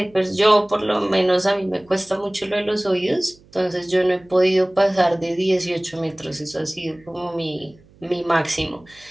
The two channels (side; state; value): right; noise; hum, 28 dB below the sound